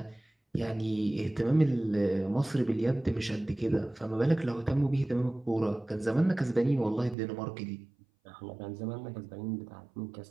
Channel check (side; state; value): left; drops out; at 7.2 s